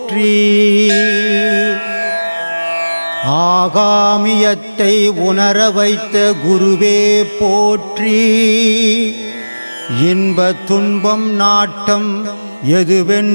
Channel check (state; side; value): inverted; both; correlation -1.00